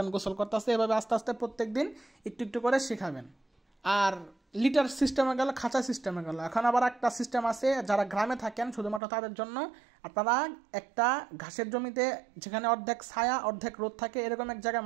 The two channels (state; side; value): drops out; left; at 9.0 s